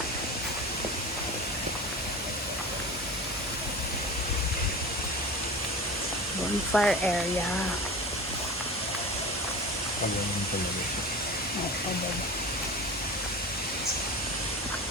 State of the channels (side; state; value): both; normal; correlation 0.32